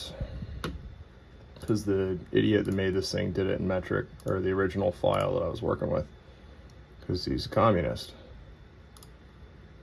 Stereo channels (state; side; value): identical; both; correlation 1.00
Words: because the idiot that made this thing did it in metric, or the original file that I was working with, because he's a communist.